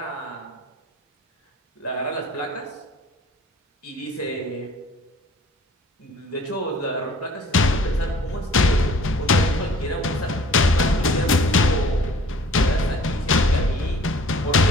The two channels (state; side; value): normal; both; correlation 0.52